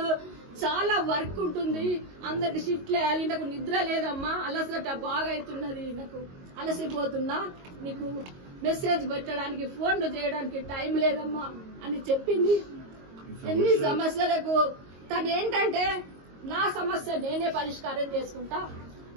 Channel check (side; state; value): left; late; 22 ms